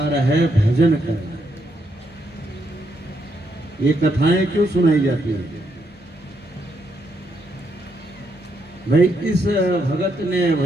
है भजन करना। ये कथाएं क्यों सुनाई जाती है? भाई इस भगत ने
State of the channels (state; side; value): normal; both; correlation 0.77